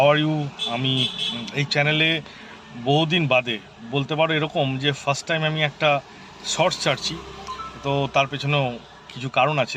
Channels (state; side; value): identical; both; correlation 1.00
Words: are you? আমি এই চ্যানেলে বহুদিন বাদে বলতে পারো এরকম যে ফার্স্ট টাইম আমি একটা শর্টস ছাড়ছি। তো তার পেছনেও কিছু কারণ